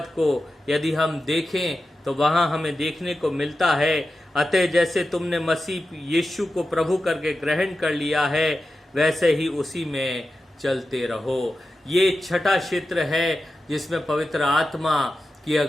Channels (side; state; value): both; normal; correlation 0.92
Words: को यदि हम देखें तो वहां हमें देखने को मिलता है, अतः जैसे तुमने मसीह यीशु को प्रभु करके ग्रहण कर लिया है वैसे ही उसी में चलते रहो। ये 6ठा क्षेत्र है जिसमें पवित्र आत्मा की